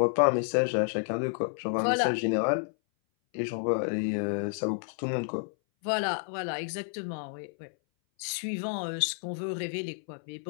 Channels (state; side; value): silent; right; 58 dB below the other